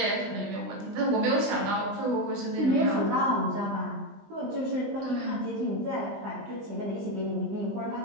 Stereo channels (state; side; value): late; left; 20 ms